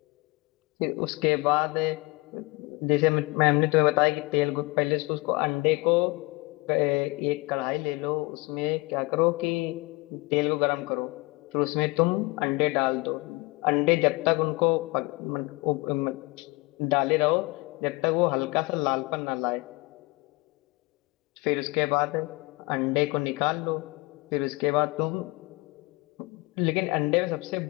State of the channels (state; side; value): quieter; right; 24.7 dB